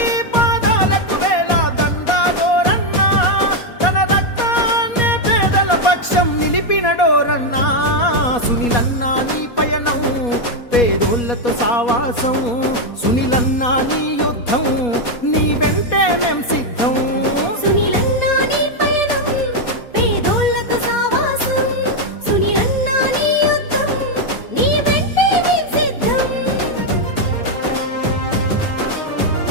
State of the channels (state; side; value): late; right; 4.2 ms